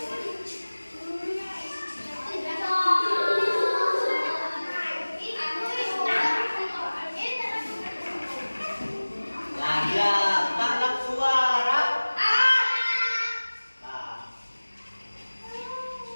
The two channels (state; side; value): inverted; both; correlation -1.00